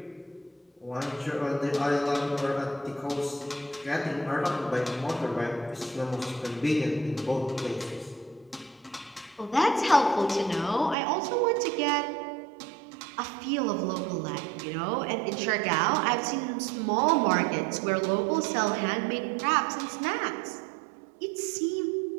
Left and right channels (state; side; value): drops out; left; at 11.0 s